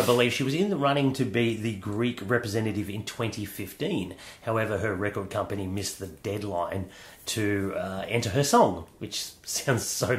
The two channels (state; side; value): identical; both; correlation 1.00